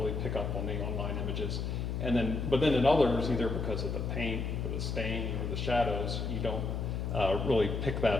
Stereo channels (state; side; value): noise; left; hum, 2 dB below the sound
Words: pick up on the online images. But then in others, either because of the paint or the stain or the shadows, you don't really pick